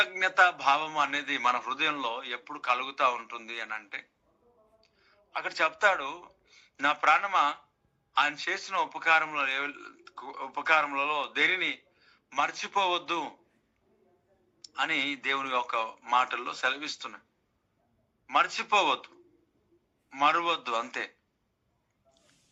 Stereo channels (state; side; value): identical; both; correlation 1.00